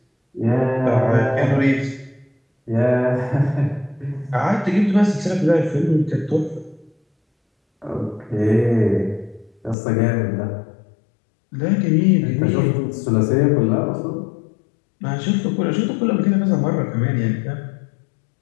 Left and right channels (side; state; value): right; drops out; at 9.8 s